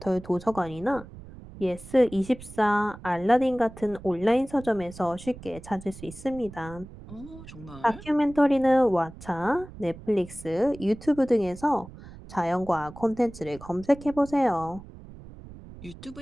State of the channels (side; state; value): right; noise; rumble, 17 dB below the sound